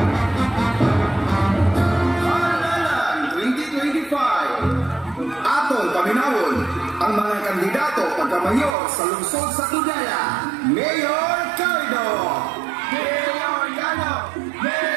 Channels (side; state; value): left; drops out; at 8.8 s